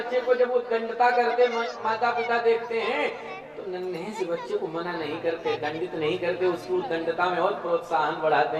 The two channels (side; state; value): both; identical; correlation 1.00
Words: को जब उत्कंठता करते माता पिता देखते हैं तो नन्हे से बच्चे को मना नहीं करते, दंडित नहीं करते, उसकी उत्कंठता में और प्रोत्साहन बढ़ाते